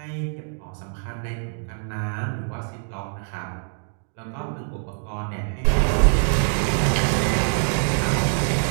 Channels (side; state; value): left; silent; 62 dB below the other